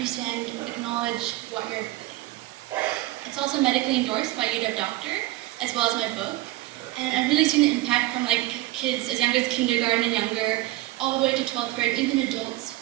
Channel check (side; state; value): left; quieter; 17.6 dB